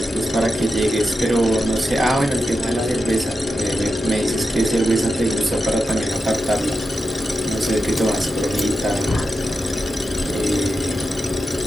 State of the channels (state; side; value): normal; both; correlation 0.89